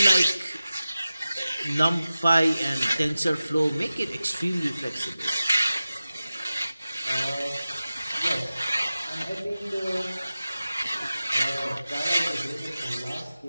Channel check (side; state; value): both; inverted; correlation -0.95